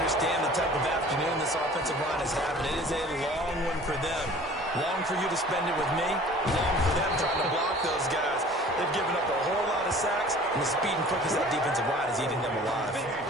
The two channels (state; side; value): normal; both; correlation 0.47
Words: the type of afternoon this offensive line is having. It is a long one for them. Long for you to spend it with me. Long for them trying to block those guys. They've given up a whole lot of sacks, and the speed and quickness of that defensive line is eating them alive.